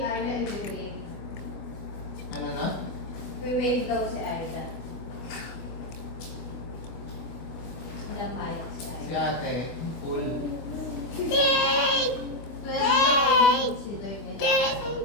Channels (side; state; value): right; late; 24 ms